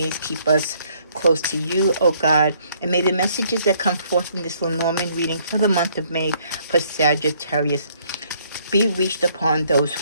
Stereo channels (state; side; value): inverted; both; correlation -0.65